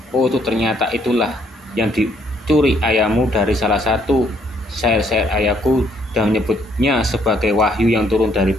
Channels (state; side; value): normal; both; correlation 0.68